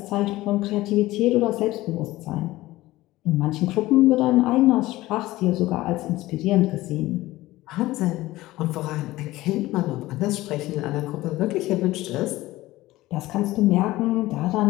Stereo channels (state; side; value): quieter; right; 17.6 dB